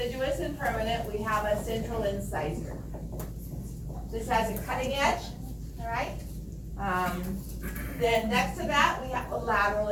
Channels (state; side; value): identical; both; correlation 1.00